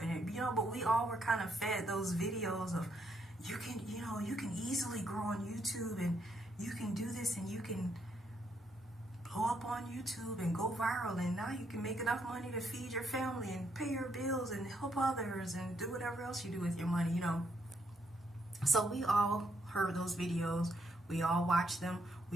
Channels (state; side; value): normal; both; correlation 0.75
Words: but we all were kind of fed those videos of you can easily grow on YouTube, and you can do this, and you can blow up on YouTube and go viral, and now you can make enough money to feed your family and pay your bills and help others and do whatever else you do with your money, So we all heard those videos. We all watched them.